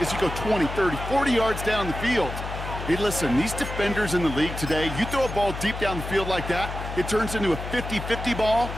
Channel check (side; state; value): left; noise; hum, 7 dB below the sound